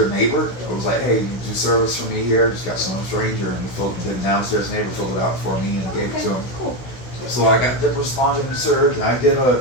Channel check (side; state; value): right; late; 16 ms